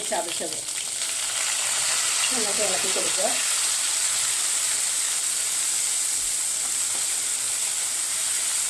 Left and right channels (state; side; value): identical; both; correlation 1.00